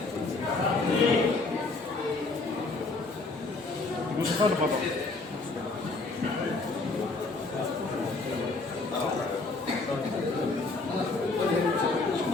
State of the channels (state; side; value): quieter; right; 3.5 dB